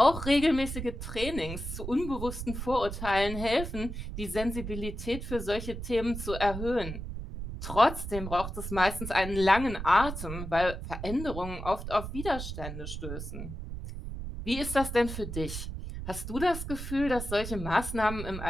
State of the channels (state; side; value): noise; right; rumble, 7 dB below the sound